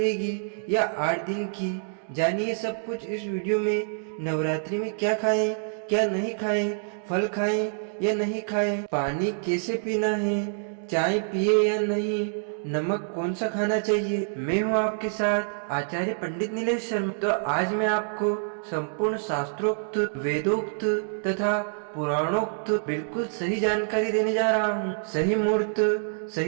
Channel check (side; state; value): left; silent; digital silence